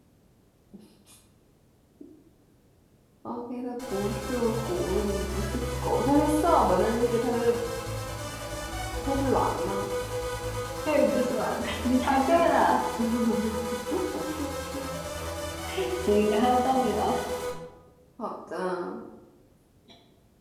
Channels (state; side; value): identical; both; correlation 1.00